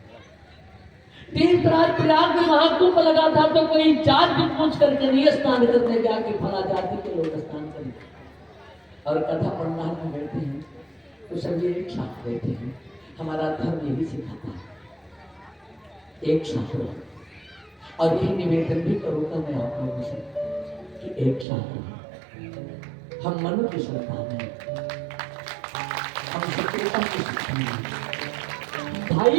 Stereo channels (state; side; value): drops out; left; at 21.5 s